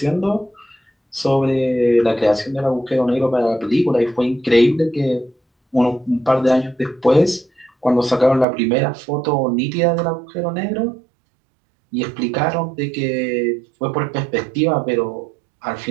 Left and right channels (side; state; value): left; drops out; at 8.5 s